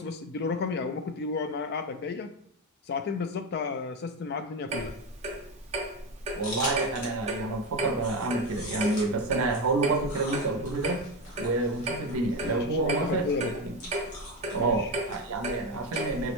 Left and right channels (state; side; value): normal; both; correlation 0.15